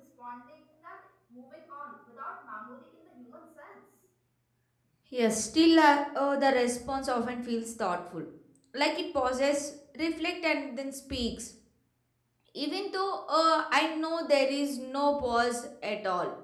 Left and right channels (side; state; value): both; identical; correlation 1.00